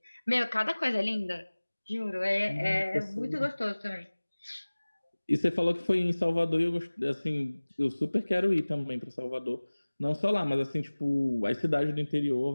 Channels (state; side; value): inverted; both; correlation -1.00